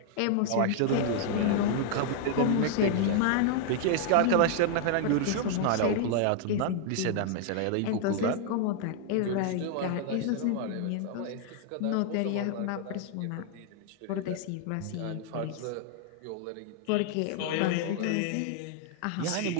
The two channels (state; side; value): different; both; correlation 0.00